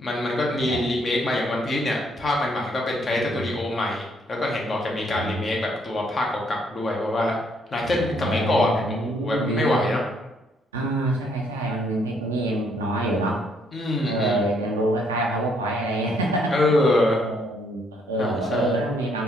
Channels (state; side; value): normal; both; correlation 0.69